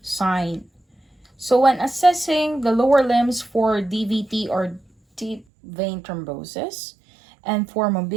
sign. So when assessing the lower limbs for DVT or deep vein thrombosis and for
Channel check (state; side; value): drops out; left; at 5.5 s